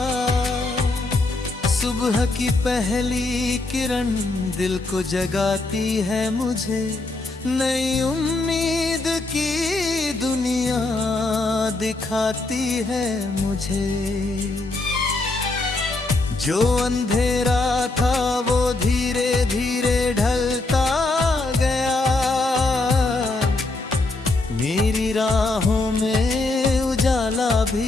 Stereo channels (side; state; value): right; quieter; 3.1 dB